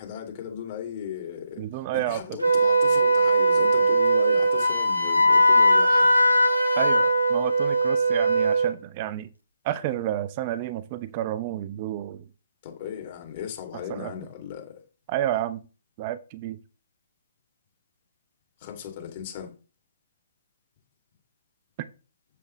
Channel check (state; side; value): inverted; both; correlation -0.82